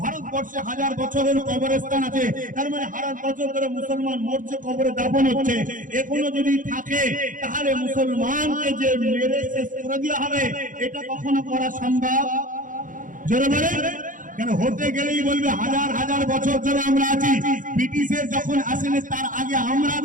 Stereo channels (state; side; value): late; left; 0.39 ms